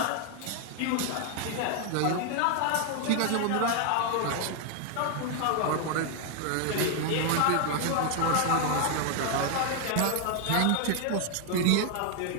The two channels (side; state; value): both; different; correlation 0.00